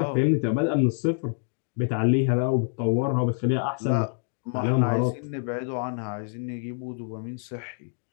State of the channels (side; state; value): right; silent; digital silence